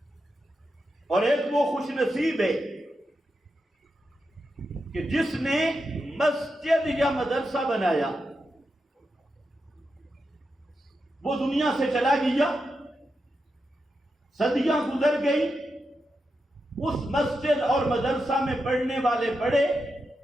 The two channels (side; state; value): both; normal; correlation 0.87